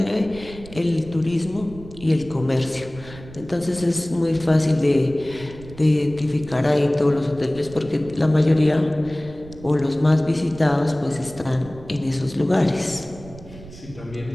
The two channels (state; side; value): noise; right; rumble, 17 dB below the sound